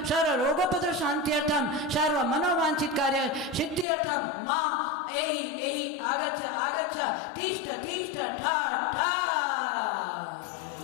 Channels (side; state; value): right; drops out; at 3.9 s